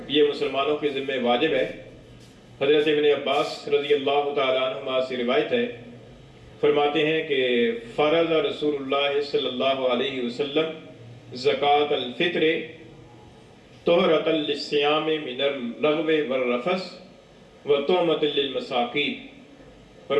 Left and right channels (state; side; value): identical; both; correlation 1.00